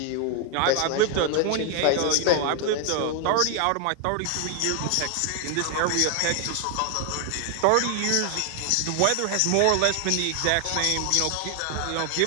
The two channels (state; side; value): different; both; correlation 0.00